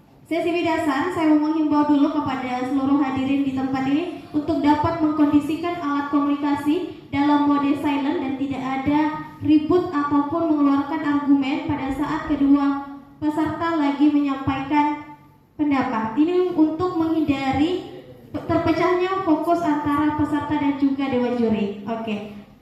sesi bidasan, saya mau menghimbau dulu kepada seluruh hadirin di tempat ini untuk dapat mengkondisikan alat komunikasi dalam mode silent dan tidak ada ribut ataupun mengeluarkan argumen pada saat kedua peserta lagi menyampaikan pendapat. Ini untuk menghindari Setelahnya fokus antara peserta dan juga dewan juri. Oke.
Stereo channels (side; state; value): both; identical; correlation 1.00